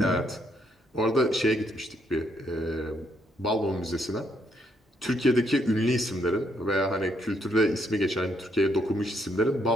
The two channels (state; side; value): normal; both; correlation 0.73